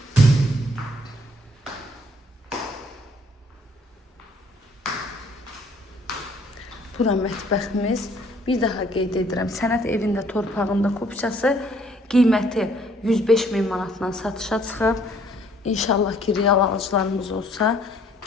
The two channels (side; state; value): both; normal; correlation 0.62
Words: Bura mətbəximiz. Bir daha qeyd edirəm, sənət evində torpağında kupçası qiyməti 105.000 manatdan satışa çıxıb. İnşallah ki, real alıcılarımız olsa